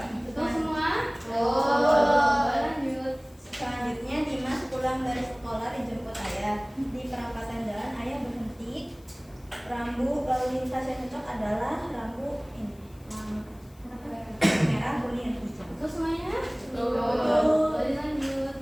Betul semua? Lanjut. Selanjutnya Dimas pulang dari sekolah dijemput ayah. Di perempatan jalan ayah berhenti. Rambu lalu lintas yang cocok adalah rambu ini, merah, kuning, hijau. Betul semuanya? Betul. Lanjut.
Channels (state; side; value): noise; left; hiss, 29 dB below the sound